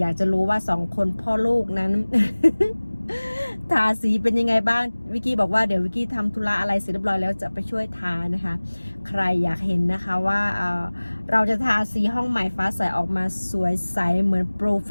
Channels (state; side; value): inverted; both; correlation -1.00